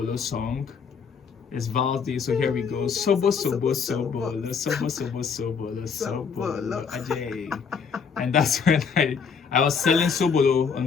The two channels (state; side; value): quieter; right; 6.1 dB